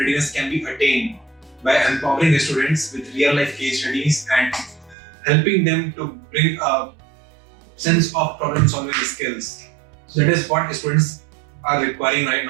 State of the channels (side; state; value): left; drops out; at 5.0 s